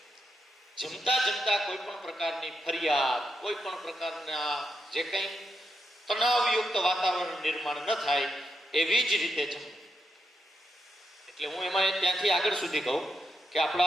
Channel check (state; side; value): normal; both; correlation 0.83